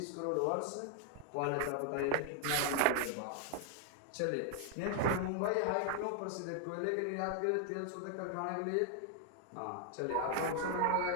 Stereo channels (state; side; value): different; both; correlation 0.00